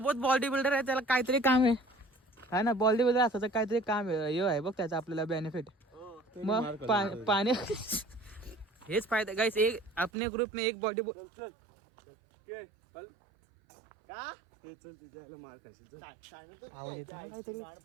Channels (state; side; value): drops out; left; at 10.1 s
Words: बॉडी बिल्डर आहे त्याला काहीतरी काम आहे हा ना. बॉडी बिल्डर असं काहीतरी काम आहे हे आहे बघ त्याचा आपल्याला बेनिफिट. मग पाणी हेच फायदा गाइस. एक अपने ग्रुप में एक बॉडी चल का ते चल तुझ्याला मार खाशील.